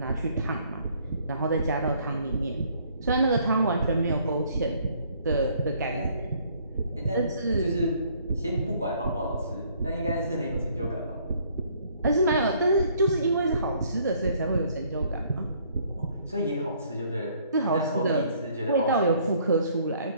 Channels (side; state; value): both; inverted; correlation -0.62